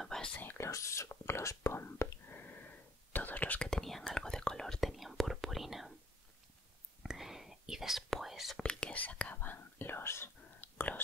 base, los Gloss Bomb, todos los que tenían algo de color tenían purpurina. Y después vi que sacaban los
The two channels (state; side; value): normal; both; correlation 0.60